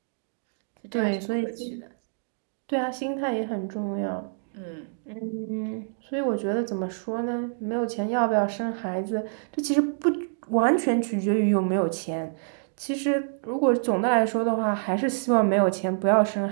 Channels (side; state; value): left; silent; digital silence